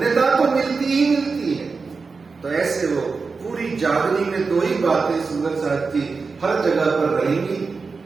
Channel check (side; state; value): left; quieter; 4.6 dB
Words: तो मिलती ही मिलती है। तो ऐसे वो पूरी जागनी में दो ही बातें सुंदर साथ की हर जगह पर रहेंगी।